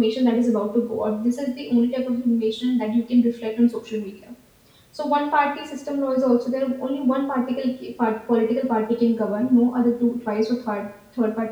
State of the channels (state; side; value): identical; both; correlation 1.00